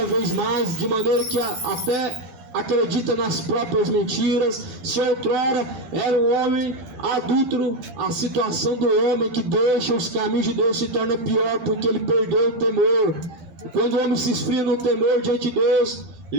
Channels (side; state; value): left; late; 13 ms